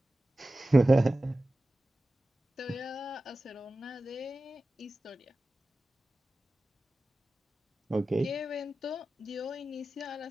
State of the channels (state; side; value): normal; both; correlation 0.95